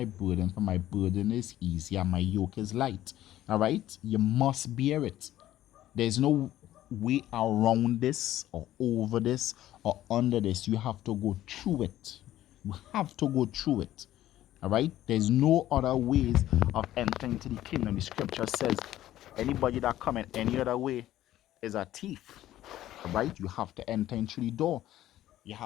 burden, for my burden is easy and my yoke is light." All right? You must bear it. There's no way around this or over this or under this. You have to go through it. You have to go through it. All right? There's no other ways of entering into the kingdom. The scripture says, anybody that come in any other way is a thief. All right? You have to enter in through the door.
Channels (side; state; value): right; quieter; 13.7 dB